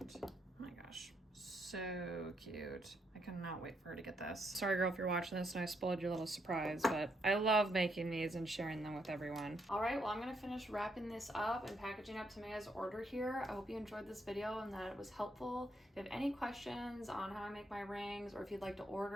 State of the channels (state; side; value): normal; both; correlation 0.76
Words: Oh my gosh. So cute. I cannot wait for her to get this. Sorry girl if you're watching this and I spoiled your little surprise, but I love making these and sharing them with everyone. All right, well I'm gonna finish wrapping this up and packaging up Tamea's order here. I hope you enjoyed this video and that it was helpful. If you have any questions on how I make my rings or if you'd like to